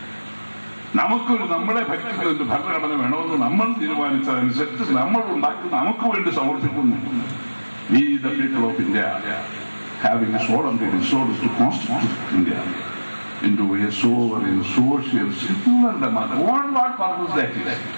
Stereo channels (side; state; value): both; inverted; correlation -1.00